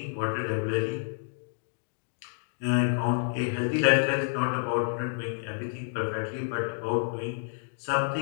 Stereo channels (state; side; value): silent; right; digital silence